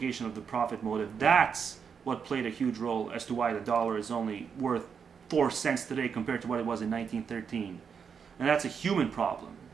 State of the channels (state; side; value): quieter; left; 6.6 dB